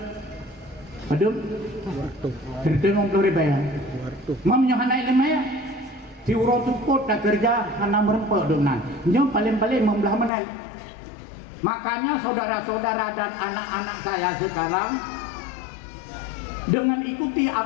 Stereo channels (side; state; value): right; drops out; at 10.3 s